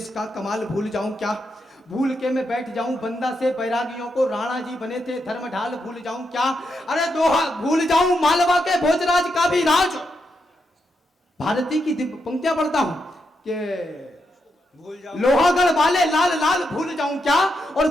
का कमाल भूल जाऊं क्या? भूल के मैं बैठ जाऊं बंदा से बैरागियों को, राणा जी बने थे धर्म ढाल भूल जाऊं क्या? अरे दोहा भूल जाऊं मालवा के भोजराज का भी राज। भारती की दिव्य पंक्तियां पढ़ता हूं कि भूल जाऊं लोहागढ़ वाले लाल लाल भूल जाऊं क्या? और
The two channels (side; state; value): both; normal; correlation 0.83